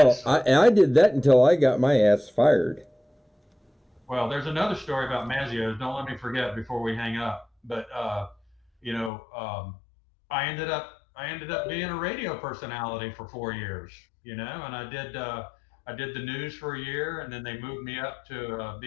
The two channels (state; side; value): drops out; right; at 9.1 s